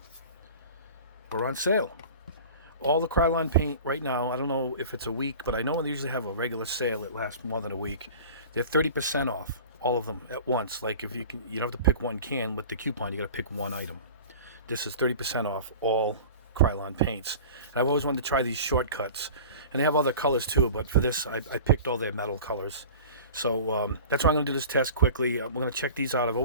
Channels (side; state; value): both; inverted; correlation -0.39